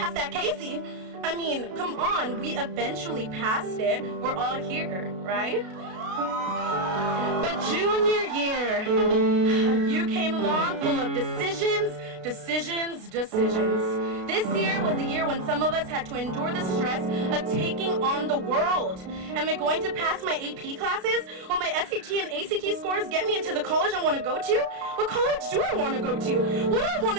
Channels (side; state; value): left; late; 33 ms